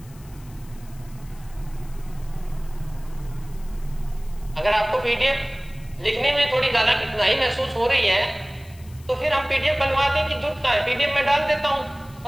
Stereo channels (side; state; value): left; noise; hiss, 25 dB below the sound